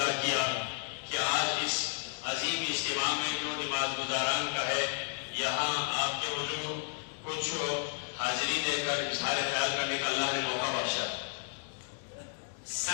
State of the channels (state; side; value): silent; right; 56 dB below the other